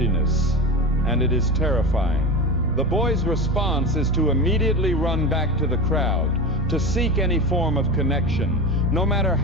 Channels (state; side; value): normal; both; correlation 0.25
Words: and it is terrifying. The boy's response is to immediately run back to the crowd, to seek any form of connection, no matter